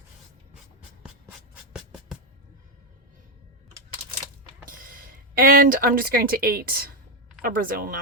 And I'm just going to eat a Brazil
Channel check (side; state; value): both; normal; correlation 0.06